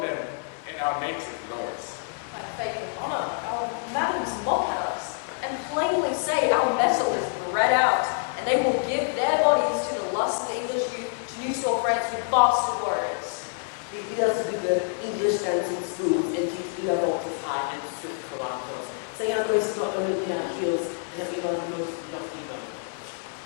in our native lords. By faith and honour, our madams mock at us, and plainly say our metal is bred out, and they will give their bodies to the lust of the English youth to new store France with bastard warriors. They bid us with the English dancing spoons and teach Lavantis high and swift carantos, saying our grace is not only in our heels and that we are the most lofty bone.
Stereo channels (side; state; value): right; silent; 60 dB below the other